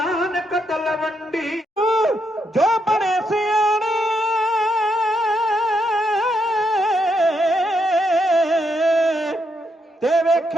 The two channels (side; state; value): both; normal; correlation 0.79